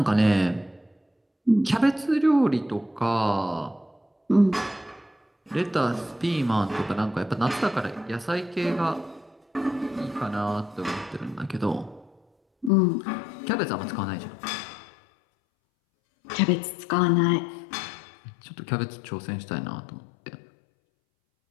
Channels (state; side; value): drops out; right; at 12.7 s